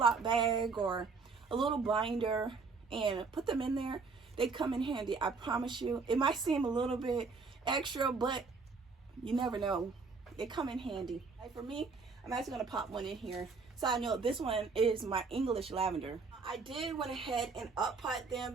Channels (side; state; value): left; quieter; 4.6 dB